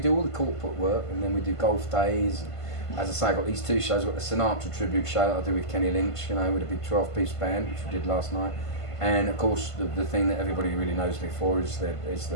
do all the corporate work, and then we do golf days. As I say, I've got these two shows. I've got the Sinatra tribute show that I do with Kenny Lynch, you know, with a big 12-piece band, which we did last night. And of course, the thing that everybody really knows me for is the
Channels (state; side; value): late; right; 1.5 ms